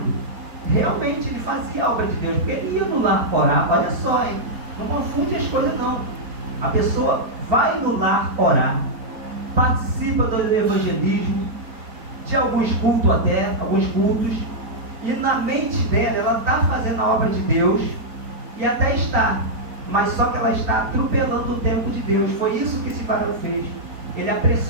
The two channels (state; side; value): late; left; 4.4 ms